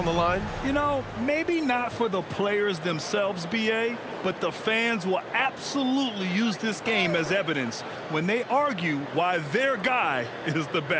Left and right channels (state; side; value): identical; both; correlation 1.00